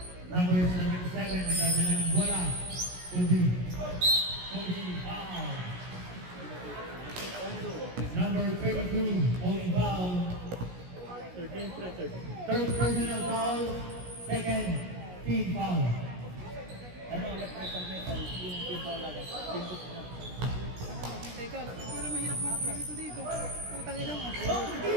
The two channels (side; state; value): left; late; 17 ms